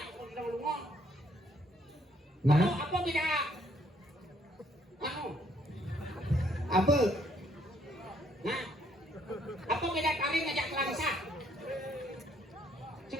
kau lu kau. Nah, Apa beda? Anu, apa? nah, apa beda kali ngajak langsa?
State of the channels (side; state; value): both; normal; correlation 0.67